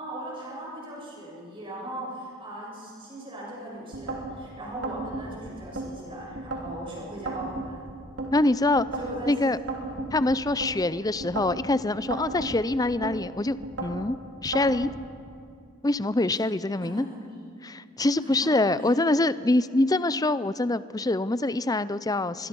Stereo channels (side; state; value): both; normal; correlation 0.63